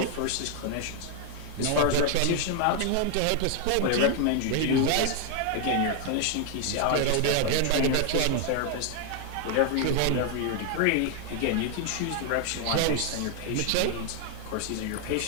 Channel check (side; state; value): both; different; correlation 0.00